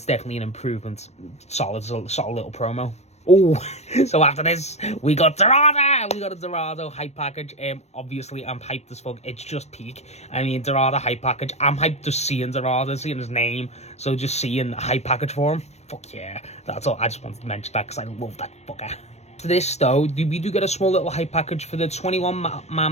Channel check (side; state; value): right; late; 0.32 ms